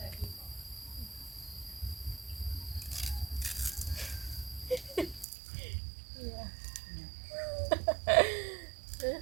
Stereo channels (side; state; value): left; drops out; at 5.2 s